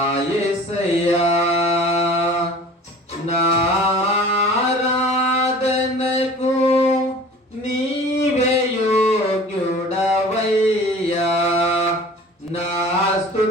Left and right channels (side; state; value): both; normal; correlation 0.44